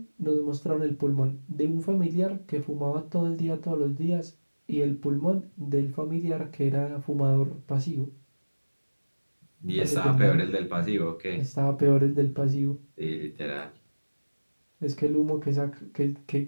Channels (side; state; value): both; inverted; correlation -1.00